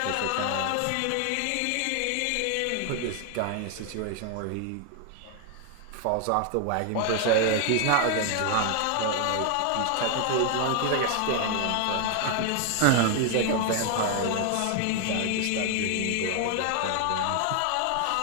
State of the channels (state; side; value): different; both; correlation 0.00